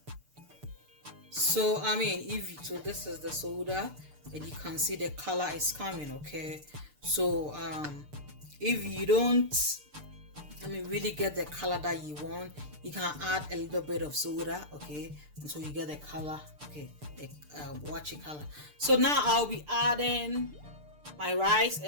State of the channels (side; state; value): left; late; 6.7 ms